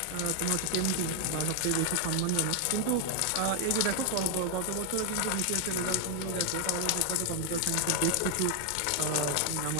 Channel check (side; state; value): both; different; correlation 0.00